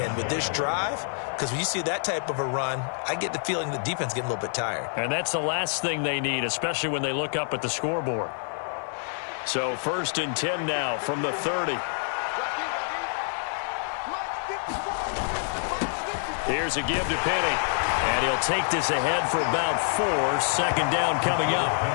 with this drive, because when you see that type of a run, I get the feeling the defense getting a little bit tired. And that's the last thing they need, especially when they look up at the scoreboard. So 1st and 10 now from the 30. Here's a give to Penny. And he'll take this ahead for about 4. 2nd down coming up.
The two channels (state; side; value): silent; right; 59 dB below the other